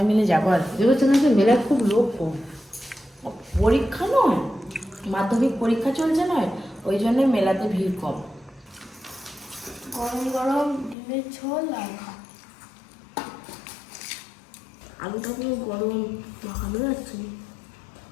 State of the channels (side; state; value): right; drops out; at 11.0 s